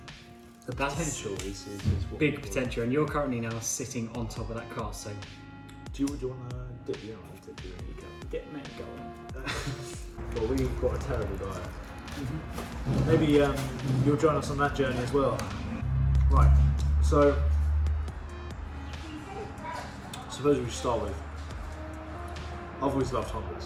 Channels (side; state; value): both; identical; correlation 1.00